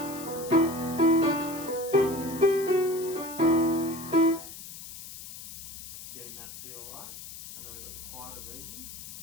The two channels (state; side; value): noise; left; hiss, 13 dB below the sound